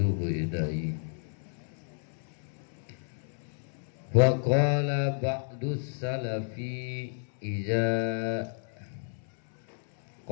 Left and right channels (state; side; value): silent; right; 57 dB below the other